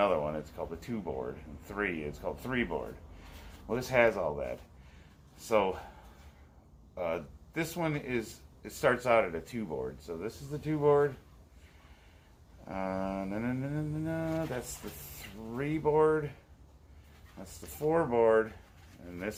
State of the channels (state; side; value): identical; both; correlation 1.00